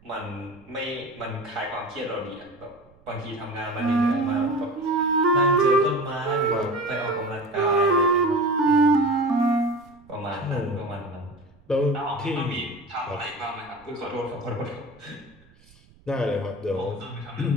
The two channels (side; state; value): right; noise; rumble, 28 dB below the sound